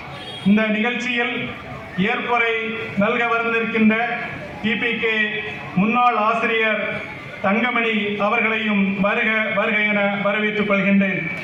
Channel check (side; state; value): both; identical; correlation 1.00